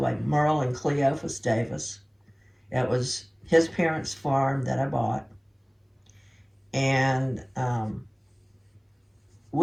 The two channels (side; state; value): both; identical; correlation 1.00